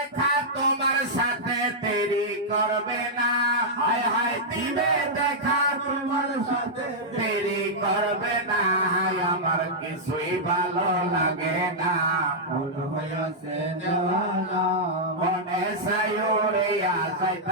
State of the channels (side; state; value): both; normal; correlation -0.08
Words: তোমার সাথে, দেরি করবে না। হায় হায় দিবে দেখা তোমার সাথে দেরি করবে না। হায় আমার কিছুই ভালো লাগে না, মন হইয়াছে দেওয়ানা। মনে চাই উড়িয়া